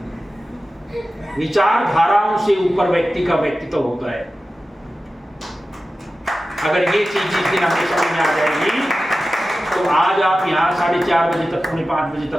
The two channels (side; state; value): both; normal; correlation 0.94